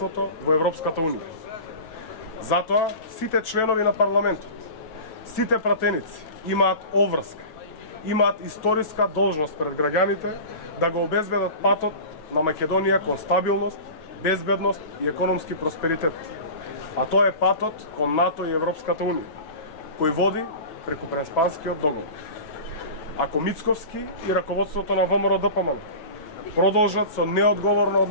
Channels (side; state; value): right; late; 9.2 ms